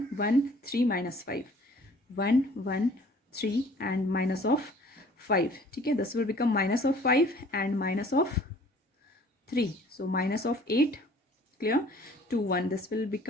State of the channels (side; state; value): both; normal; correlation 0.53